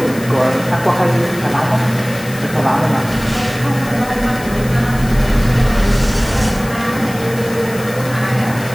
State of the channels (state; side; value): noise; left; hiss, 16 dB below the sound